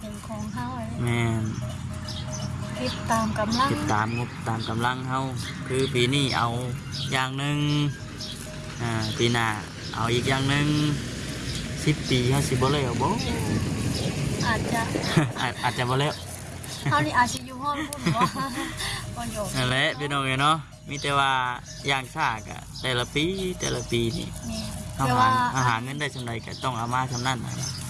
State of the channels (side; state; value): both; identical; correlation 1.00